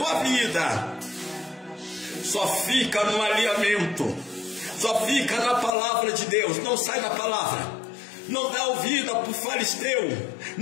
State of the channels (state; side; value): drops out; right; at 5.7 s